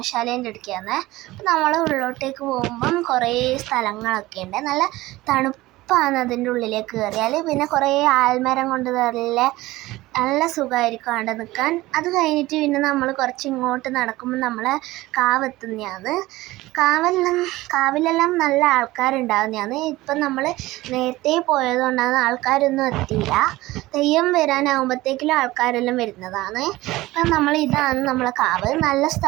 അടുക്കാണ്. അപ്പം നമ്മൾ ഉള്ളിലോട്ടേക്ക് പോകുമ്പം കുറേ സ്ഥലങ്ങളൊക്കെ ഉണ്ട്. നല്ല തണുപ്പാണ് അതിൻ്റെ ഉള്ളിലേക്ക് കയറിയാൽ. പിന്നെ കുറേ ആൽമരം കൊണ്ട് നല്ല സുഖമായിരിക്കും അവിടെ നിൽക്കാൻ. അത് കഴിഞ്ഞിട്ട് പിന്നെ നമ്മൾ കുറച്ച് ഇങ്ങോട്ട് നടക്കുമ്പോൾ നമ്മൾ കാവെത്തുന്നതാണ്. കാവിലെല്ലാം നല്ല ആൾക്കാരുണ്ടാകുന്നതാണ്. ഇപ്പം നമ്മൾ നേരത്തെ പോയതുകൊണ്ടാണ് ആൾക്കാരൊന്നും എത്തിയില്ല. തെയ്യം വരാനാകുമ്പോഴത്തേക്കിലും ആൾക്കാരെല്ലാം വരുന്നതാണ്. അപ്പം ഇതാണ് നമ്മളെ കാവ്. നല്ല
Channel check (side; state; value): left; quieter; 18.4 dB